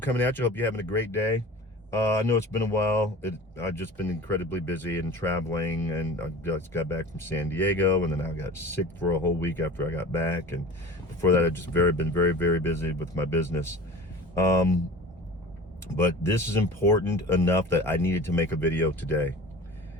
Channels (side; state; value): both; normal; correlation 0.38